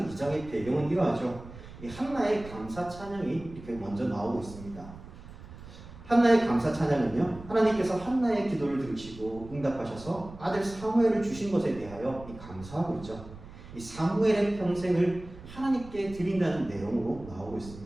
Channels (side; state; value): right; noise; rumble, 16 dB below the sound